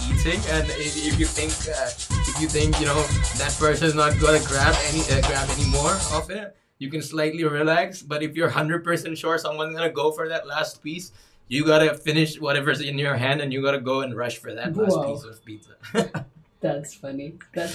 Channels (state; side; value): identical; both; correlation 1.00